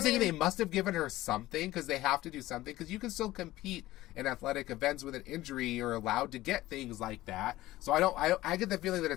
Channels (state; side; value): quieter; right; 16.6 dB